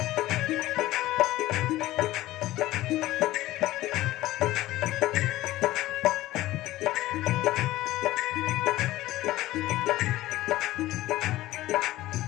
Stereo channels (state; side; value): quieter; right; 16.4 dB